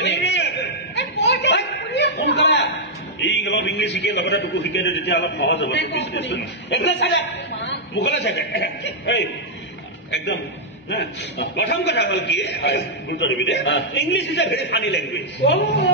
সোনকালে এই অলপ ইংলিছ শিকে লগতে তোকো শিকাই দিওঁ তেতিয়া অলপ সহজ হ'ব বিজনেছটো একদম চাগে মুখলে চাগে এই একদম প্ৰথম কথা হ'ল কি গুৰুত্ব দিবি দে English is a very funny language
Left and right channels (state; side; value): normal; both; correlation -0.05